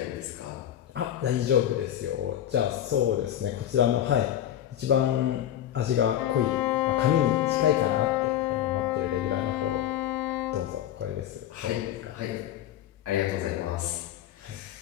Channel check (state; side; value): quieter; right; 11.4 dB